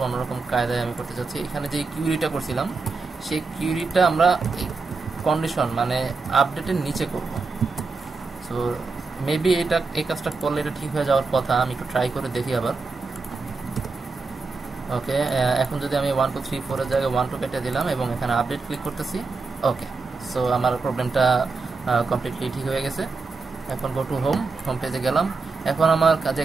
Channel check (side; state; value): left; quieter; 4.2 dB